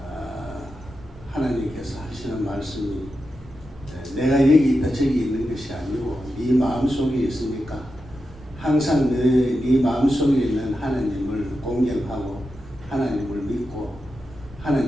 하나님께서 하시는 말씀이 내가 여기 있다 저기 있는 것이 아니고 네 마음속에 있으니까 항상 네 마음속에 있는 하나님을 공경하고 하나님을 믿고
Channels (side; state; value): both; normal; correlation 0.89